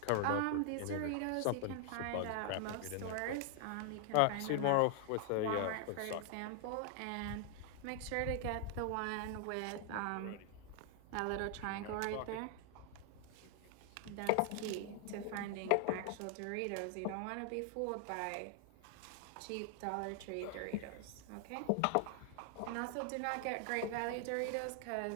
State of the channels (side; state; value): both; different; correlation 0.00